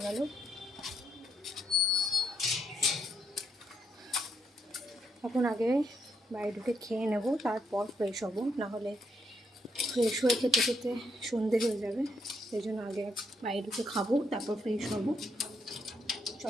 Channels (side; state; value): both; normal; correlation 0.77